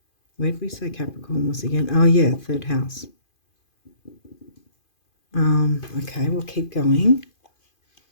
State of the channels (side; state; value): right; late; 2.5 ms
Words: Where did we say Capricorn was again? Oh, yeah, 3rd house. Okay, we'll keep going.